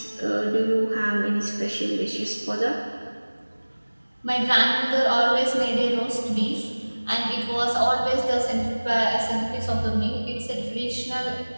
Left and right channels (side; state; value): both; inverted; correlation -1.00